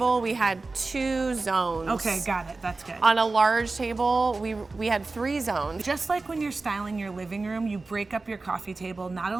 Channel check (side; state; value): left; quieter; 3.6 dB